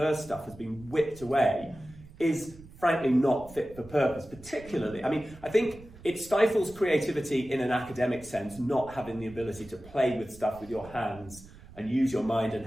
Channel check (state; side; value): noise; right; rumble, 20 dB below the sound